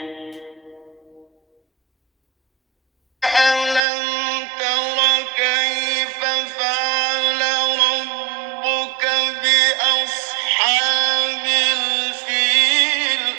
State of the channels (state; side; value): drops out; left; at 3.8 s